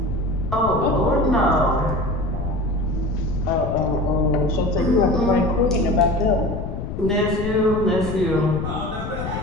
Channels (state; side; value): noise; left; rumble, 6 dB below the sound